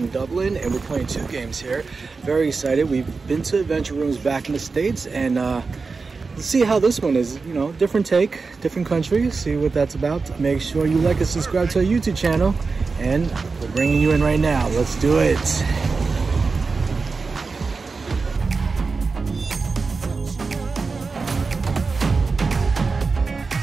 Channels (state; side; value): quieter; left; 4.4 dB